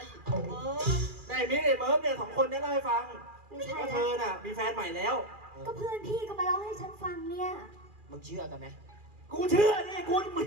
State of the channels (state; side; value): late; left; 2.4 ms